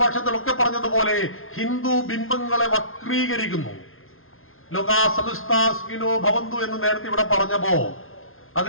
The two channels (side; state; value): right; late; 0.61 ms